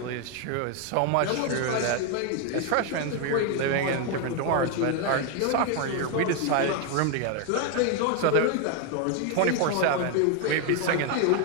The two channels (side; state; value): both; different; correlation 0.01